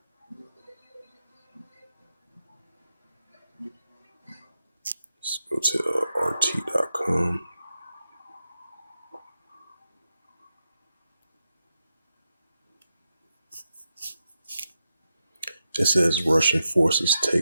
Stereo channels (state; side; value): inverted; both; correlation -0.87